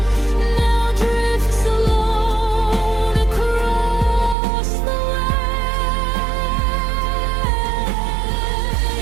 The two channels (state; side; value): drops out; left; at 4.4 s